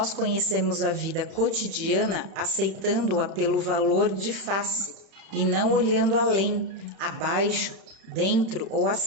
conhecemos a vida cotidiana aceitando-a pelo valor de face e não olhando além, abaixo, dentro ou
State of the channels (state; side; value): late; left; 31 ms